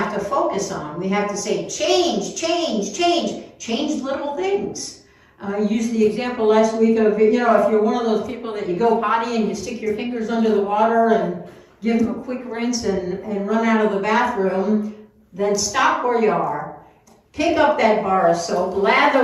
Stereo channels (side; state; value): both; identical; correlation 1.00